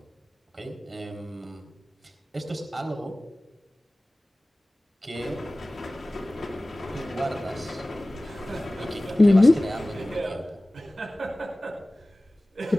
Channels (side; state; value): both; normal; correlation 0.98